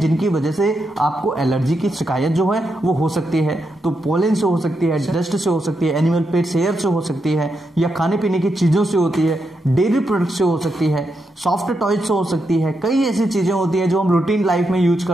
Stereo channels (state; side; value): normal; both; correlation 0.83